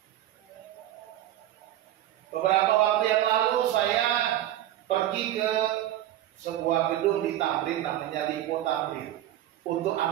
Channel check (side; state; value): left; quieter; 13.1 dB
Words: Beberapa waktu yang lalu saya pergi ke sebuah gedung di Tamrin namanya Lipo Tamrin untuk